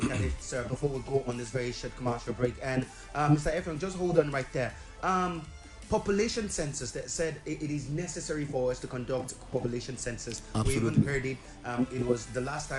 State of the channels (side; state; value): both; identical; correlation 1.00